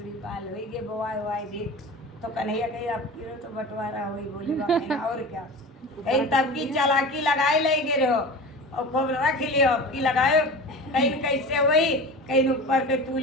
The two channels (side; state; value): both; normal; correlation 0.33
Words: बाल हुई गे बोआई वाई देख तो कन्हैया कहीं अब की तो बंटवारा हुई बोले और क्या कहीं तब की चालाकी लगाए ले गे रहो और खूब रख लियो अब की लगाए कहीं कैसे हुई कहीं ऊपर के